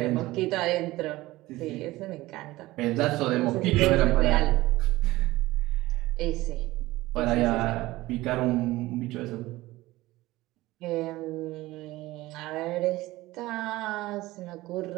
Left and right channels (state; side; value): quieter; left; 18.4 dB